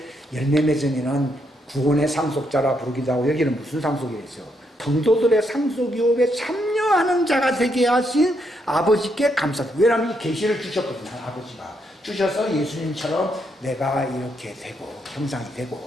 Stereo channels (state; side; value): normal; both; correlation 0.77